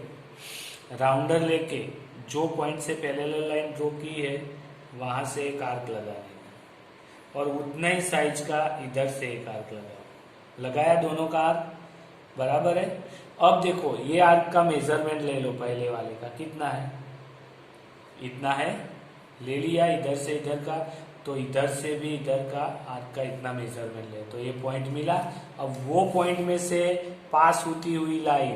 राउंडर लेके जो पॉइंट से पैरेलल लाइन ड्रॉ की है वहां से एक आर्क लगा देना, और उतना ही साइज का इधर से एक आर्क लगाओ। लगाया दोनों का आर्क, बराबर है। अब देखो ये आर्क का मेजरमेंट ले लो, पहले वाले का कितना है, इतना है, ले लिया। इधर से इधर का, तो इधर से भी इधर का आर्क का इतना मेजरमेंट ले, तो ये पॉइंट मिला। अब वो पॉइंट में से पास होती हुई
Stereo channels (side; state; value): both; identical; correlation 1.00